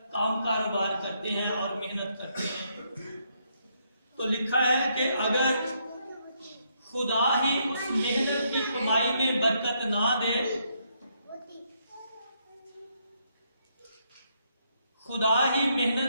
काम कारोबार करते हैं और मेहनत करते हैं। तो लिखा है कि अगर खुदा ही उस मेहनत की कमाई में बरकत ना दे, खुदा ही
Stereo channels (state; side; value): inverted; both; correlation -0.75